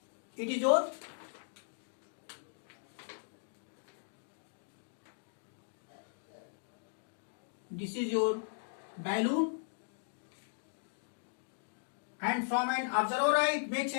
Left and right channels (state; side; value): silent; right; digital silence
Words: It is your this is your balloon, and from an observer eye it makes